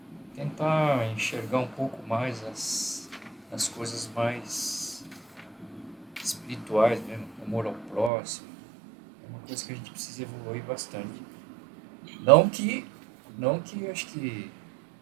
Tentar enxergar um pouco mais as coisas mais espirituais mesmo, amor ao próximo. É uma coisa que a gente precisa evoluir bastante. Não que acho que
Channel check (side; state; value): left; drops out; at 8.1 s